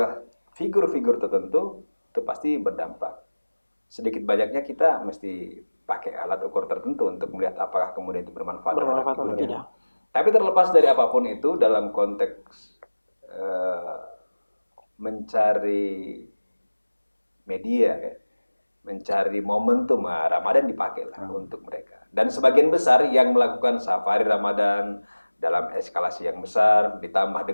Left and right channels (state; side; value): inverted; both; correlation -1.00